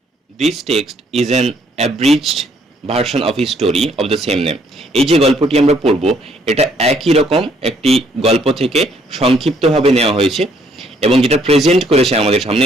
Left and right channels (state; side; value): normal; both; correlation 0.67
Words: This text is an অ্যাব্রিজড version of his story of the same name. এই যে গল্পটি আমরা পড়ব, এটা একই রকম একটি গল্প থেকে সংক্ষিপ্তভাবে নেওয়া হয়েছে এবং যেটা প্রেজেন্ট করেছে, আমাদের